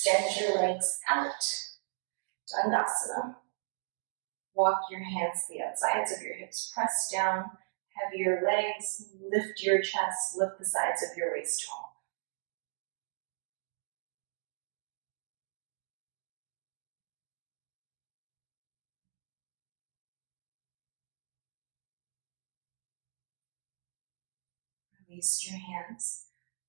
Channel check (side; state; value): left; silent; digital silence